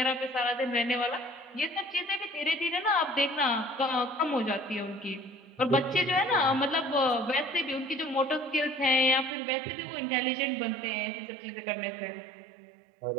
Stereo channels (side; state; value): left; drops out; at 9.3 s